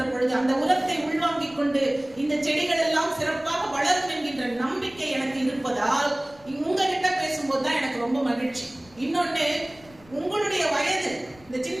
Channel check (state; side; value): noise; left; rumble, 25 dB below the sound